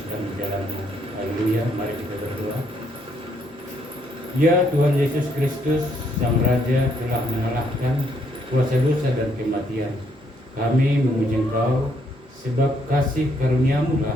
jalanmu. Haleluya. Mari kita berdoa. Ya Tuhan Yesus Kristus, Sang Raja telah mengalahkan kuasa dosa dan kematian. Kami memuji Engkau sebab kasih karuniamu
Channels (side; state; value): both; normal; correlation 0.71